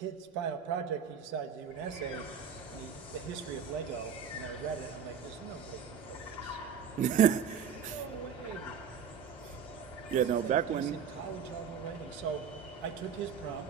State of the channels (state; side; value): quieter; left; 7.3 dB